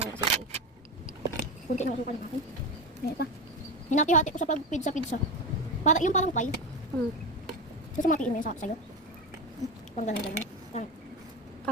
kasi. Kunti na asukal natin. Ngayon pa. Hinati-hati ko sa pag-pizza. Para, yung parang pie. Susumatiin mo yun sa'yo. Parang ganun.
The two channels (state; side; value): normal; both; correlation 0.20